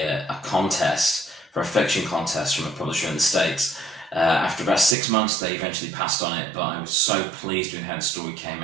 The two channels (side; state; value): left; drops out; at 5.0 s